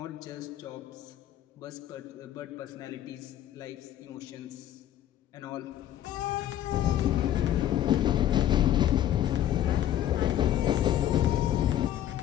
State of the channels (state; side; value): quieter; right; 11.8 dB